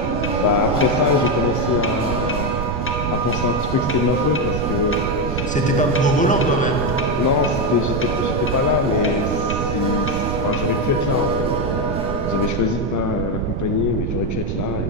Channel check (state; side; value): noise; right; rumble, 2 dB below the sound